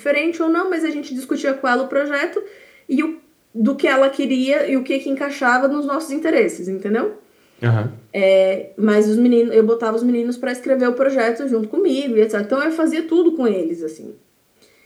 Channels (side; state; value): both; identical; correlation 1.00